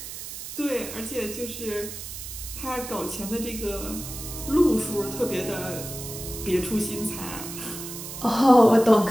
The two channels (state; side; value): noise; right; hiss, 9 dB below the sound